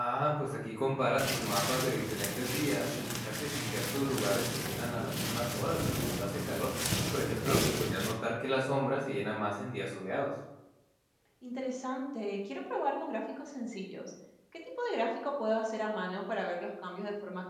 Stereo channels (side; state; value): both; identical; correlation 1.00